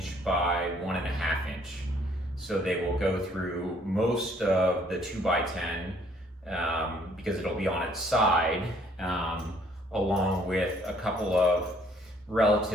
by 1.5 inch. So they will go through most of the 2x10 because it'll be on its side, along with a couple of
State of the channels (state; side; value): normal; both; correlation 0.63